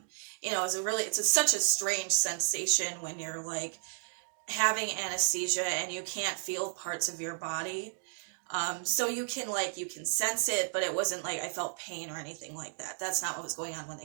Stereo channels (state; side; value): silent; left; digital silence